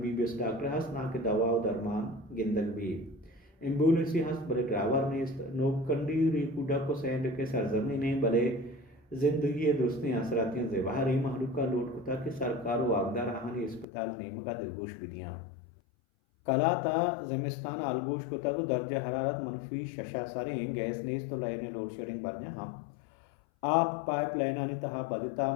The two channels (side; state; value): right; drops out; at 13.9 s